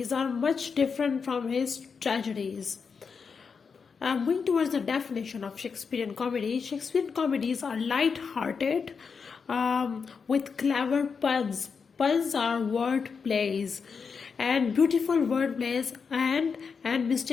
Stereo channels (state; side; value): quieter; right; 5.6 dB